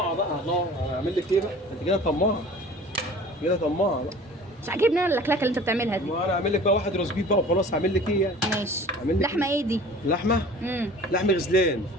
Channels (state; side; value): normal; both; correlation 0.45